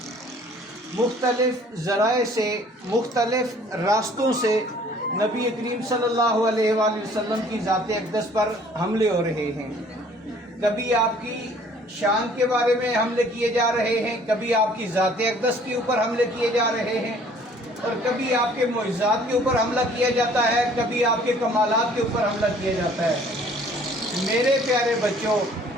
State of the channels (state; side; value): normal; both; correlation 0.55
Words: مختلف ذرائع سے، مختلف راستوں سے نبی کریم صلی اللہ علیہ وآلہ وسلم کی ذات اقدس پر حملے ہو رہے ہیں. کبھی آپ کی شان کے بارے میں حملے کیے جا رہے ہیں، کبھی آپ کی ذات اقدس کے اوپر حملے کیے جا رہے ہیں، اور کبھی آپ کے معجزات کے اوپر حملہ کیا جاتا ہے، کبھی آپ کے کمالات کے اوپر حملہ کیا جاتا ہے. میرے پیارے بچوں،